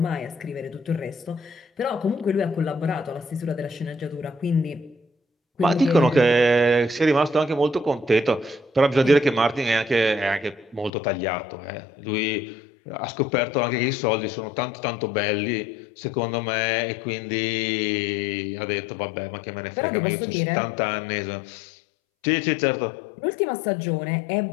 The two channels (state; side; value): drops out; right; at 10.9 s